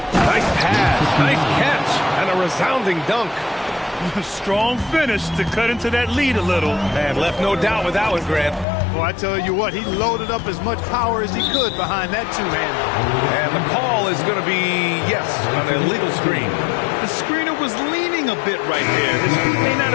pass, nice catch, and a resounding dunk. Strong finish to cut into that lead a little. And left no doubt with that one, Grant. Well, I tell you what, he loaded up as much power as he could behind that two-hander. And the call is going to be, yes, an illegal screen. The screener was leaning a bit right there. His feet may not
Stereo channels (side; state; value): right; drops out; at 8.7 s